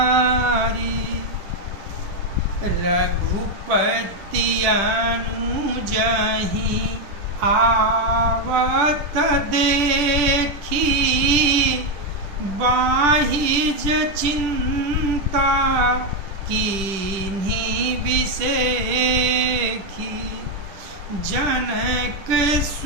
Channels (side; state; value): left; late; 10 ms